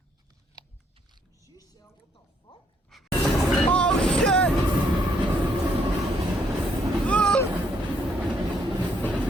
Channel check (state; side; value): normal; both; correlation 0.70